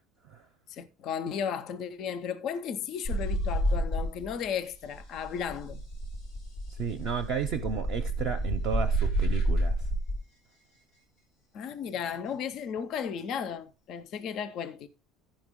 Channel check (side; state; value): both; normal; correlation 0.56